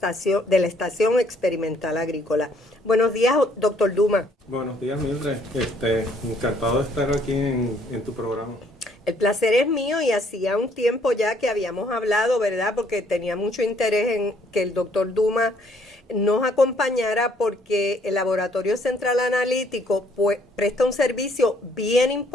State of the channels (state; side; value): normal; both; correlation 0.65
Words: Experimental Agrícola. Buenos días, doctor Dumas. Buenos días, Mildred. Encantado de estar aquí en tu programa. El placer es mío y hacía un tiempo ya que habíamos hablado, ¿verdad? Porque tenía mucho interés en que el doctor Dumas nos acompañara porque el Laboratorio Central Analítico presta un servicio bien